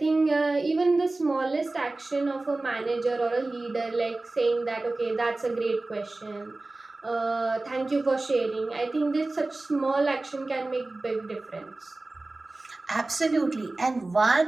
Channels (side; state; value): left; quieter; 3.1 dB